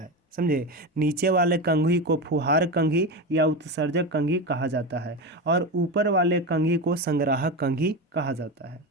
समझे। नीचे वाले कंघी को फुहार कंघी या उत्सर्जक कंघी कहा जाता है, और ऊपर वाले कंघी को संग्राहक कंघी कहा जाता है,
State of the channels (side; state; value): both; normal; correlation 0.20